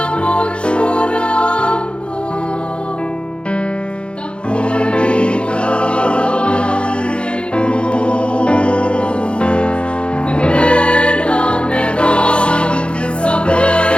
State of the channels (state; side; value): late; right; 0.057 ms